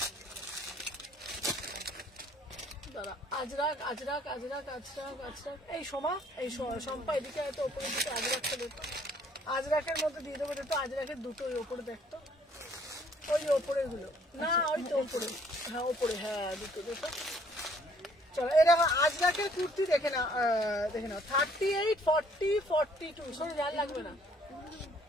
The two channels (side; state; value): both; normal; correlation 0.61